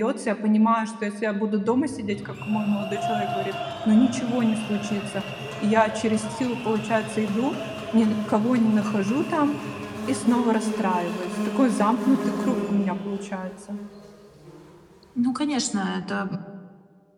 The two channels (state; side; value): identical; both; correlation 1.00